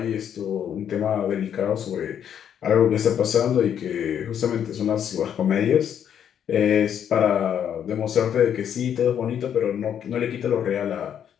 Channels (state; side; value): quieter; right; 9.0 dB